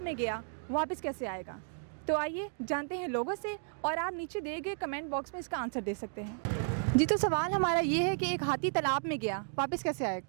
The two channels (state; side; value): silent; left; digital silence